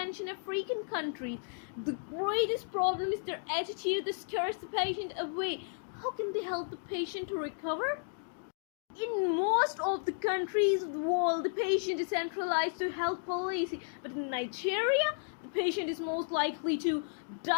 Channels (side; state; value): right; silent; digital silence